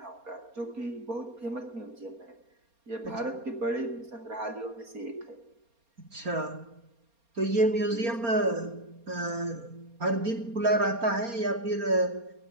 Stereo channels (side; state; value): left; late; 4.3 ms